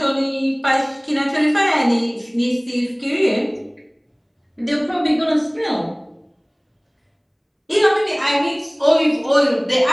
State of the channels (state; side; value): identical; both; correlation 1.00